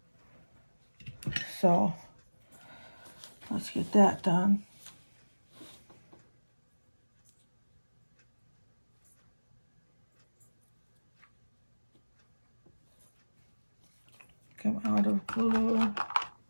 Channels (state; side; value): inverted; both; correlation -1.00